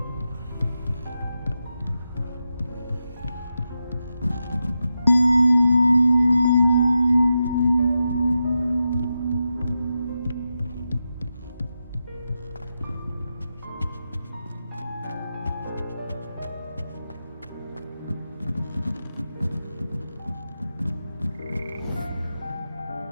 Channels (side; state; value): both; inverted; correlation -0.88